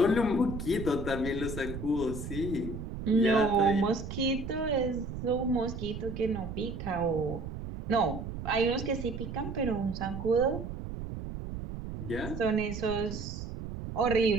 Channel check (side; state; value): right; noise; rumble, 7 dB below the sound